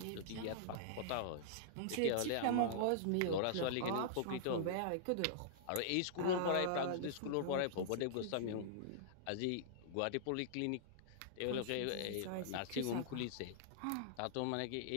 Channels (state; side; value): different; both; correlation -0.02